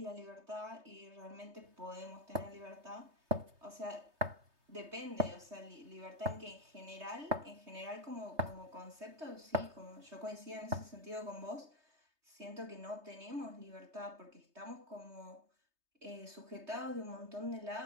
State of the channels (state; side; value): late; left; 3.3 ms